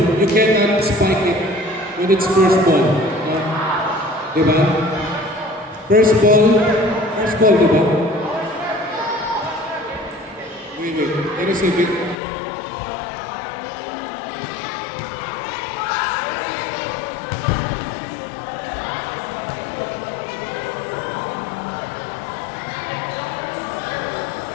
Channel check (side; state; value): right; drops out; at 12.2 s